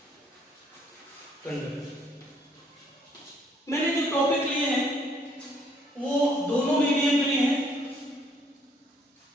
conductor. मैंने जो टॉपिक लिए हैं वो दोनों मीडियम के लिए हैं,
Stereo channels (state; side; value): normal; both; correlation 0.66